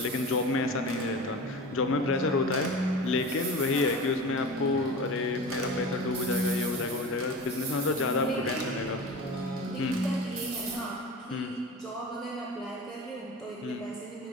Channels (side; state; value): both; normal; correlation 0.33